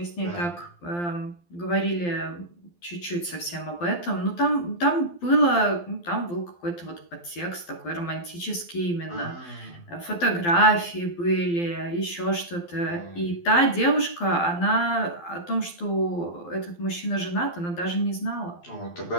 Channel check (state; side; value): late; right; 12 ms